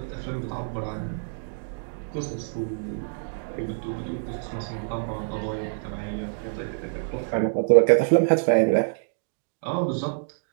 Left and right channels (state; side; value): silent; left; digital silence